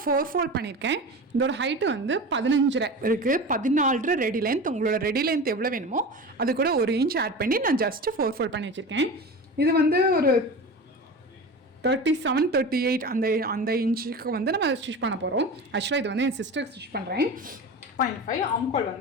4 ஃபோல்ட் பண்ணியிருக்கேன். இதோட ஹைட்டு வந்து 15 இருக்குது. 14 ரெடி லென்த். உங்களோட ரெடி லென்த் எவ்வளோ வேணுமோ அது கூட 1 இன்ச் ஆட் பண்ணி நான் ஜஸ்ட்டு 4 ஃபோல்ட் பண்ணி வச்சுருக்கேன். இது வந்து ஒரு 37, 38 அந்த இன்ச்சுக்கு வந்து நம்ம ஸ்டிச் பண்ண போகிறோம். ஆக்சுவலாக இது வந்து என் சிஸ்டருக்கு ஸ்டிச் பண்ணுறேன். 0.5 ஆம்கோல்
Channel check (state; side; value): normal; both; correlation 0.30